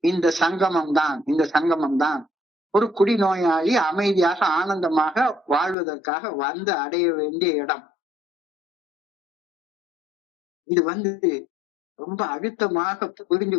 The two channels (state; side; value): drops out; right; at 5.8 s